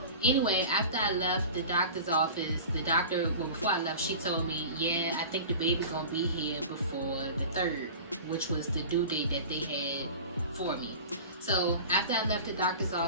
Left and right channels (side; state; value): both; inverted; correlation -0.36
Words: anyway, after I left the doctor's office, before I left, she told me, yeah, I think the baby's gonna be here before the 3rd, which was the due date that they had for me. So after I left the doctor's